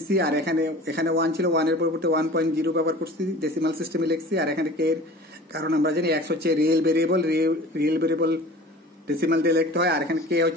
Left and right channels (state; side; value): normal; both; correlation 0.41